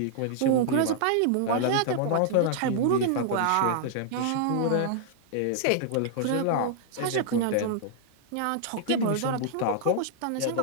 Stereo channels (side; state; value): both; different; correlation -0.01